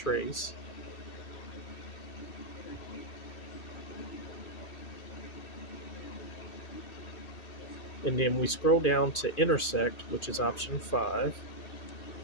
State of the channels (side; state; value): right; late; 2.5 ms